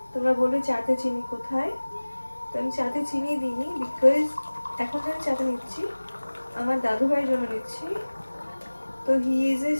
তোমরা বলবে চাতে চিনি কোথায়, তো আমি চাতে চিনি দিইনি, বিকজ এখন আমি চাতে নিচ্ছি আমার দাদু ভাইয়ের জন্য নিচ্ছি। তো he is a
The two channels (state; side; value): inverted; both; correlation -1.00